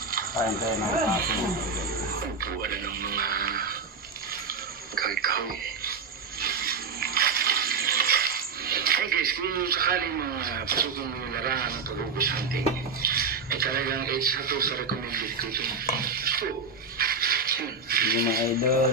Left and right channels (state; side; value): quieter; left; 4.6 dB